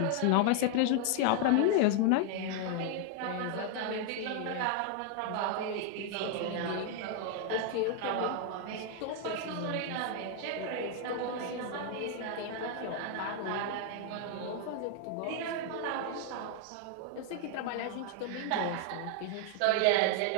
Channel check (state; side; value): different; both; correlation 0.00